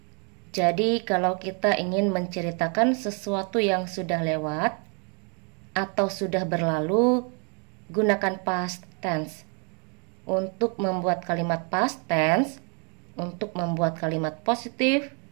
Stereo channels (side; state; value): left; quieter; 36.6 dB